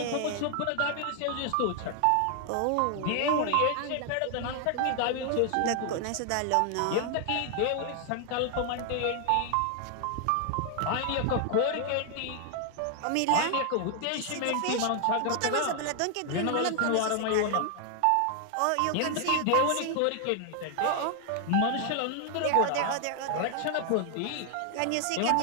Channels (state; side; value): different; both; correlation 0.00